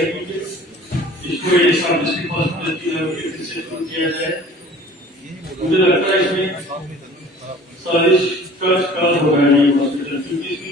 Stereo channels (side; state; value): both; normal; correlation 0.47